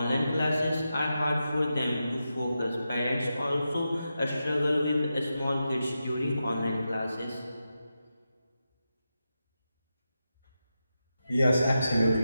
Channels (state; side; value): inverted; both; correlation -0.89